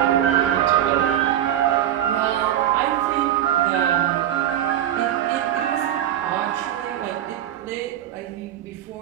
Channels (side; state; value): left; quieter; 11.3 dB